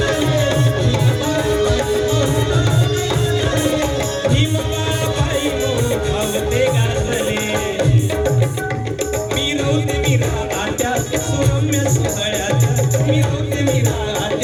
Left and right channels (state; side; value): identical; both; correlation 1.00